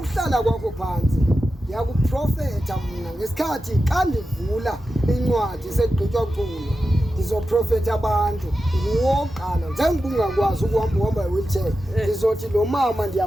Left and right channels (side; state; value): both; normal; correlation 0.92